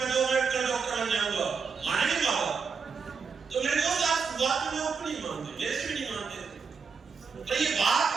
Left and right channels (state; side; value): quieter; left; 5.6 dB